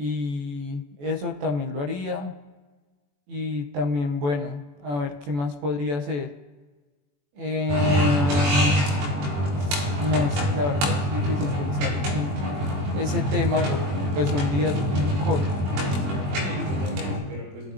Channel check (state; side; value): late; left; 21 ms